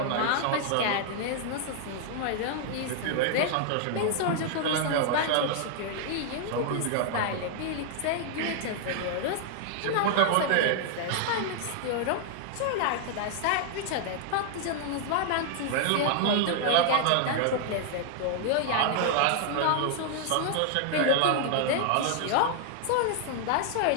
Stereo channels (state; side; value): different; both; correlation 0.00